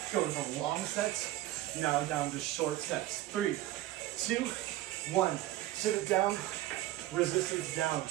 Going from long sets, now down to short sets. 3, 2, 1. Sit it down, resistance down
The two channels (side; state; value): left; quieter; 15.5 dB